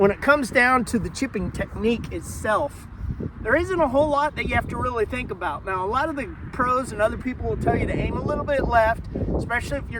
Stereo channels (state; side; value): identical; both; correlation 1.00